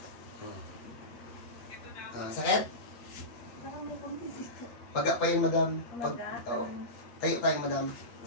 Sakit? Parang may konti dito. Paga pa yun, Madam. Tayo tayo, Madam.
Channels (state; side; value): late; right; 8.3 ms